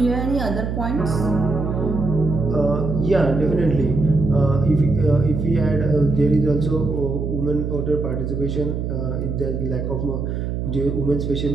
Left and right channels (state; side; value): noise; right; hum, 3 dB below the sound